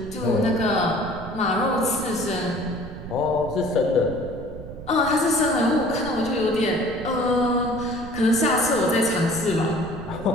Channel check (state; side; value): noise; right; rumble, 13 dB below the sound